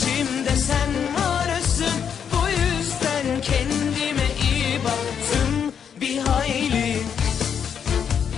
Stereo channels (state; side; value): quieter; right; 7.7 dB